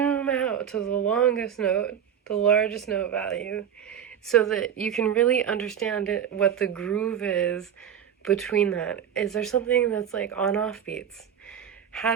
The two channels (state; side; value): quieter; left; 8.8 dB